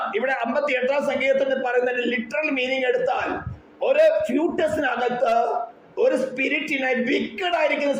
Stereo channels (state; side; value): identical; both; correlation 1.00